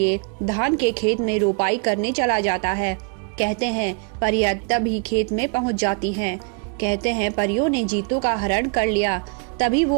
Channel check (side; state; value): left; quieter; 36.3 dB